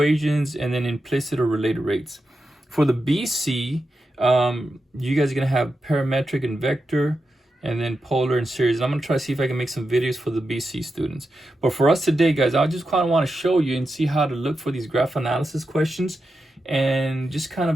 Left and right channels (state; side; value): normal; both; correlation 0.89